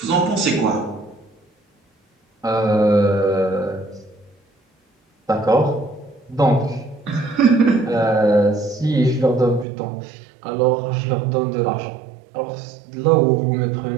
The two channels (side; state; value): left; drops out; at 9.7 s